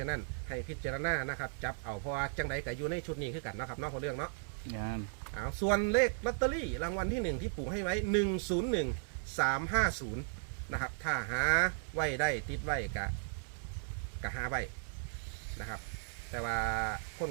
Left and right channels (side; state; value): left; silent; digital silence